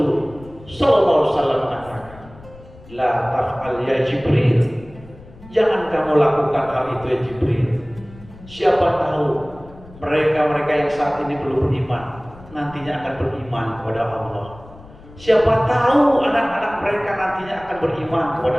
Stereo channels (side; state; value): left; noise; rumble, 21 dB below the sound